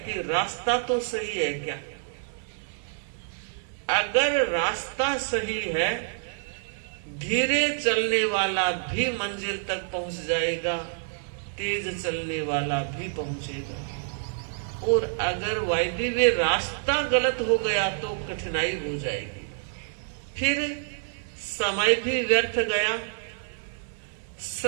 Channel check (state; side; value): silent; left; digital silence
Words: कि रास्ता तो सही है क्या। अगर रास्ता सही है, धीरे चलने वाला भी मंजिल तक पहुंच जाएगा, तेज चलने वाला भी पहुंचेगा। और अगर वायदे वे रास्ता गलत हो गया तो कठिनाई हो जाएगी। फिर समय भी व्यर्थ गया,